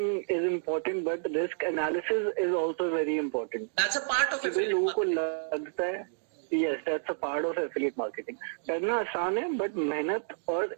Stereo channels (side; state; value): left; silent; digital silence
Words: is important, but risk analysis is also very important. That's a part of affiliate. लोगों को लगता है yes that's a part of affiliate marketing. करना आसान है बट मेहनत और